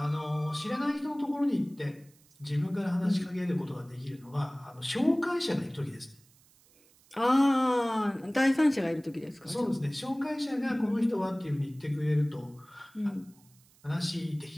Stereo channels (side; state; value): right; noise; hiss, 30 dB below the sound